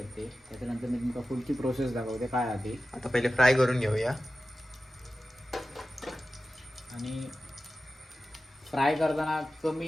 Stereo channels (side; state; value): both; normal; correlation 0.94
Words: त्याच्यानंतर मी तुमका पुढची प्रोसेस दाखवते काय आहे. आता पहिले फ्राय करून घेऊया. आणि फ्राय करताना कमी